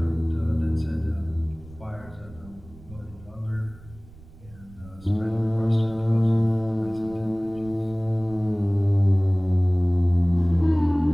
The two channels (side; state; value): right; noise; rumble, 21 dB below the sound